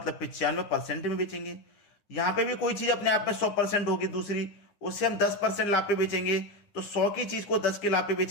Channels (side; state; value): right; late; 9.8 ms